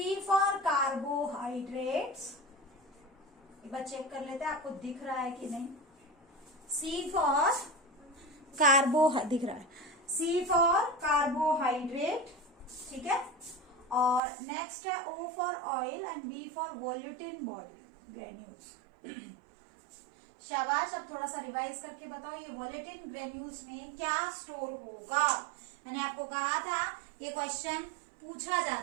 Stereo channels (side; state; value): left; drops out; at 14.2 s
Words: फॉर कार्बोहाइड्रेट्स, एक बार चेक कर लेते हैं आपको दिख रहा है कि नहीं। सी फॉर दिख रहा है, सी फॉर कार्बोहाइड्रेट, ठीक है। और नेक्स्ट है O for oil and B for volutin body granules. शाबाश, अब थोड़ा सा रिवाइज करके बताओ ये वोलेटिन ग्रेन्यूल्स में क्या स्टोर होगा। मैंने आपको कहा था ये क्वेश्चन पूछा